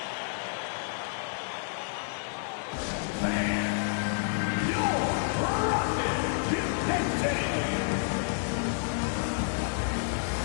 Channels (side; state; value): right; silent; 58 dB below the other